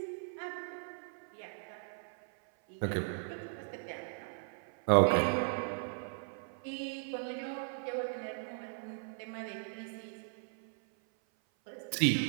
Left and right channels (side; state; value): left; silent; 53 dB below the other